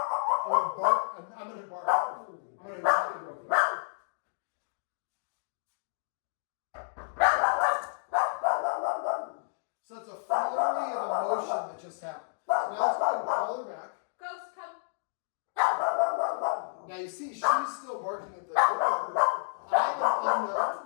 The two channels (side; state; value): right; silent; digital silence